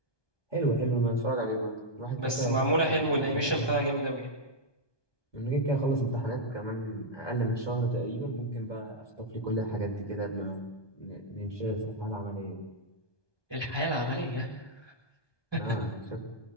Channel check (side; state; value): right; late; 1.2 ms